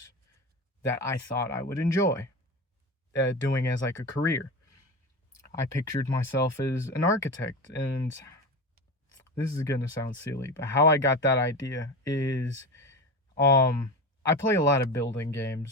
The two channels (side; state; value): both; normal; correlation 0.25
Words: that I thought I would enjoy doing as like a career. I pictured myself as an architect, and this is gonna sound silly, but how I got that idea is um I play a lot of building